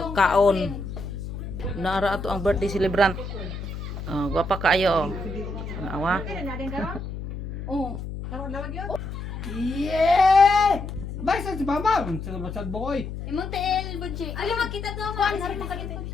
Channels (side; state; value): left; noise; hum, 7 dB below the sound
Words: kaon. Naara ato ang birthday celebrant. Gwapa kaayo. Awa. Oh. Yeah! Basta si Mama, sa basad boy. Imong tel budget. Ano makita to? Kuan hari makita.